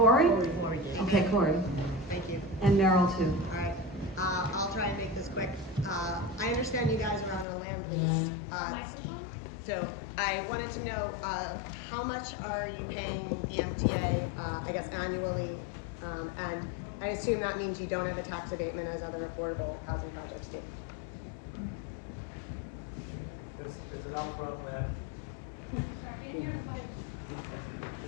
Okay, Corey. Thank you. And Meryl too. All right, I'll try and make this quick. I understand you guys are on a land lease. So I wanted to know, how much are you paying the MTA, I guess annually? And I assume that means you don't have a tax abatement as other affordable housing projects do. There's an upfront land.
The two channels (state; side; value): drops out; right; at 7.5 s